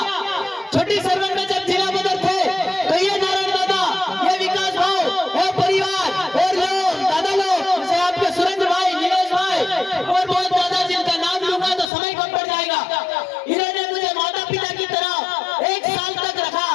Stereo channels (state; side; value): drops out; right; at 11.9 s